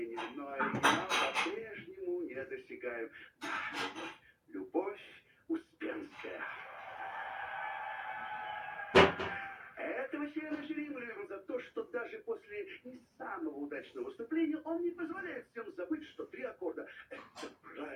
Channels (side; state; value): both; identical; correlation 1.00